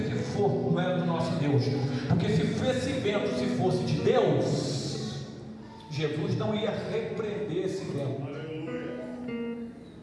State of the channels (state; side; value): identical; both; correlation 1.00